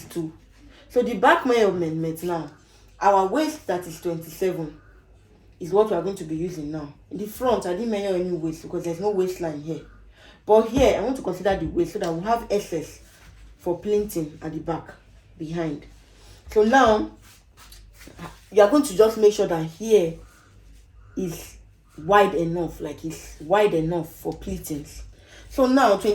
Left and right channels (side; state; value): both; identical; correlation 1.00